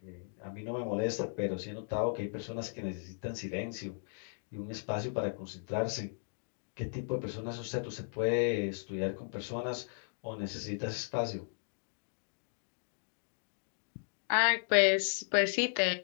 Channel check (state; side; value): silent; right; digital silence